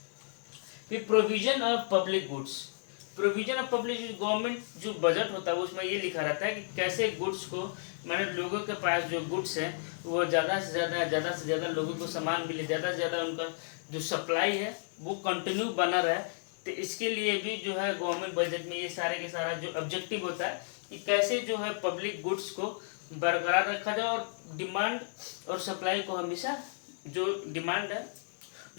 फिर provision of public goods. Provision of public government जो बजट होता है उसमें ये लिखा रहता है कि कैसे गुड्स को, मैंने लोगों के पास जो गुड्स है वो ज़्यादा से ज़्यादा लोगों को सामान मिले, ज़्यादा से ज़्यादा उनका जो सप्लाई है वो कंटिन्यू बना रहे। तो इसके लिए भी जो है गवर्नमेंट बजट में ये सारे के सारा जो ऑब्जेक्टिव होता है कि कैसे जो है पब्लिक गुड्स को बरकरार रखा जाए, और डिमांड और सप्लाई को हमेशा, जो डिमांड है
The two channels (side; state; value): right; silent; digital silence